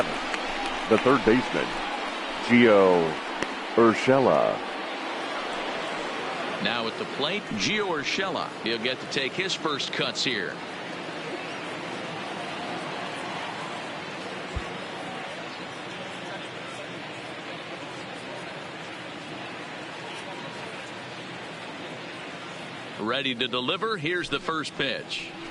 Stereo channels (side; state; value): both; identical; correlation 1.00